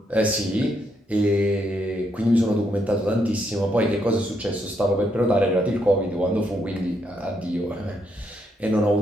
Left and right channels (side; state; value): both; normal; correlation 0.76